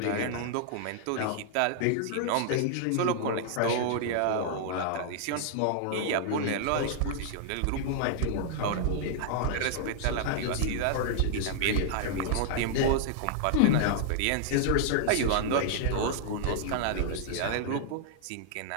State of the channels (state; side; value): different; both; correlation -0.01